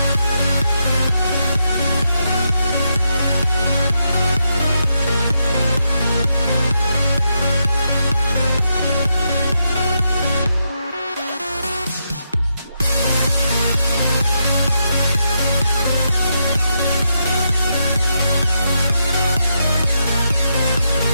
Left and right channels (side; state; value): both; inverted; correlation -0.82